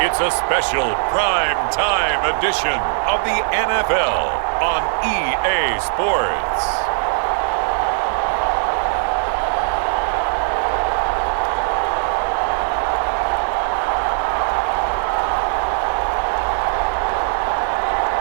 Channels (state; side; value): silent; left; digital silence